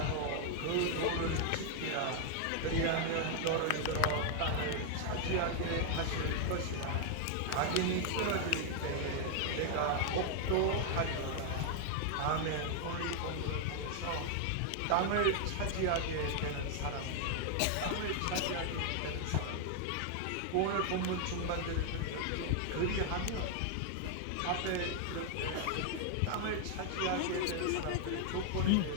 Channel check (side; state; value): both; different; correlation 0.00